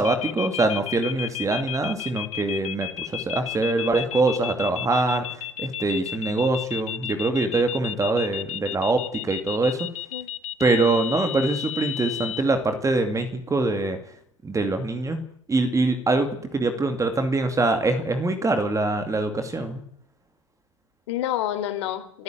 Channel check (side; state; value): both; normal; correlation 0.66